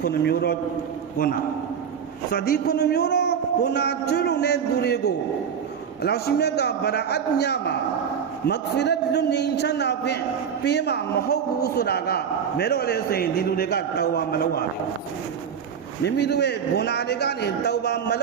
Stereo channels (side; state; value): left; quieter; 7.5 dB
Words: 9မျိုးတော့ဘုနာစဒီ9မျိုးတော့ဘုနာကျွလုံတဲ့သူတွေကိုအလ္လာဟ်ရှိမြတ်ကဗရာအတ်ညာမှာမဂ်ဖီရတ်လွန်ငင်းချမ်းသာဖြင့်ပေးမှာမဟုတ်ဘူးဆိုတာကမဲတော့လေဆိုရင်ဒီလူတွေကတောင်းဝမလုပ်ရဘူးမိမိတို့ရဲ့ဂုဏတွေကနေတောင်းပါမလ